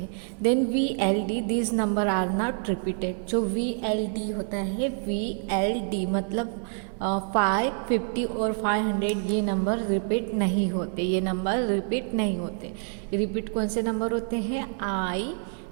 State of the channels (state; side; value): silent; left; 57 dB below the other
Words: Then VLD, this number are not repeated. जो VLD होता है, VLD मतलब 5, 50 और 500 ये नंबर रिपीट नहीं होते. ये नंबर रिपीट नहीं होते. रिपीट कौन से नंबर होते हैं? I,